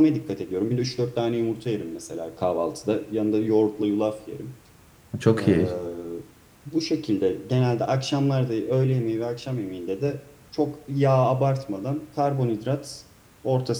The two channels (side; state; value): both; identical; correlation 1.00